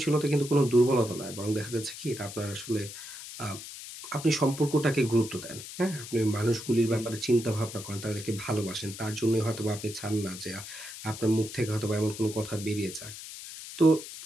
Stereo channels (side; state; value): left; noise; hiss, 12 dB below the sound